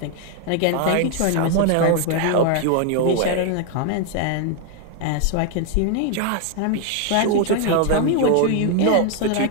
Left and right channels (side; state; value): both; different; correlation 0.00